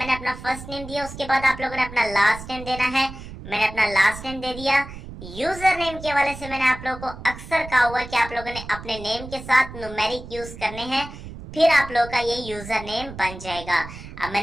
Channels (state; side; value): noise; right; rumble, 13 dB below the sound